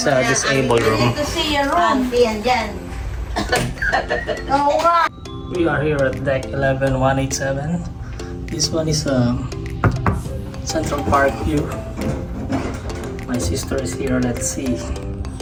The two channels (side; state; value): both; identical; correlation 1.00